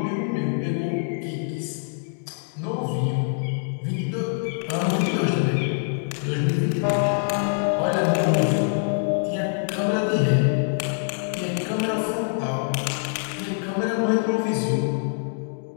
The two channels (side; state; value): right; silent; digital silence